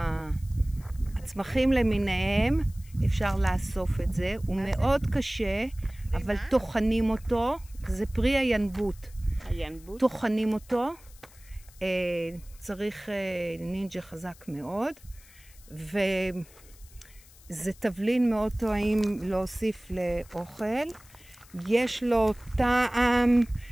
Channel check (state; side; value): noise; left; hiss, 24 dB below the sound